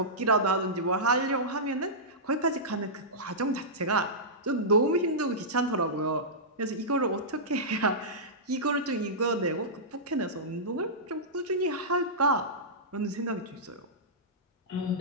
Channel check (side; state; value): both; normal; correlation -0.15